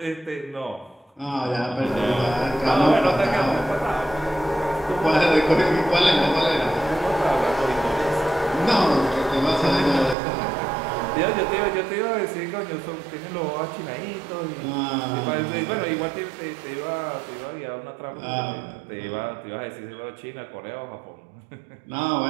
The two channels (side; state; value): left; drops out; at 10.2 s